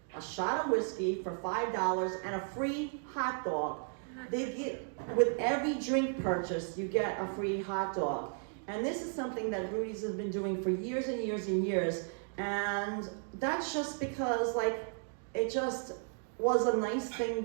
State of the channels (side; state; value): left; silent; 55 dB below the other